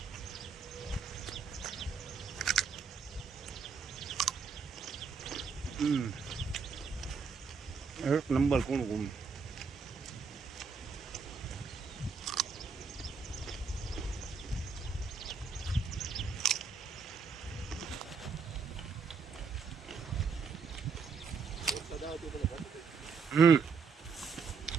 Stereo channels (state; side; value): quieter; left; 5.4 dB